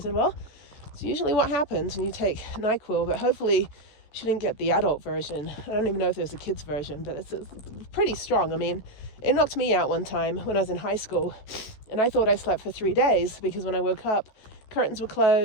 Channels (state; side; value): late; right; 14 ms